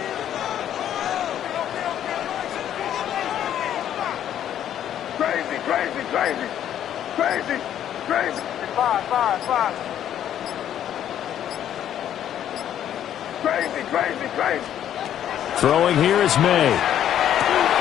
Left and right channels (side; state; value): right; quieter; 10.6 dB